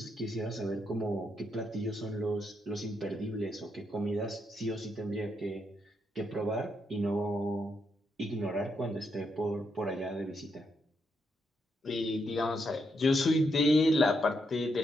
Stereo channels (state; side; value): normal; both; correlation 0.80